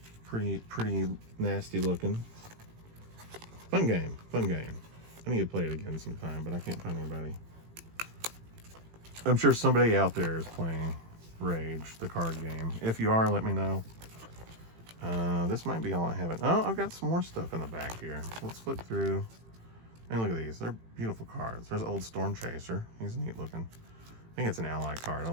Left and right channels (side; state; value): left; late; 18 ms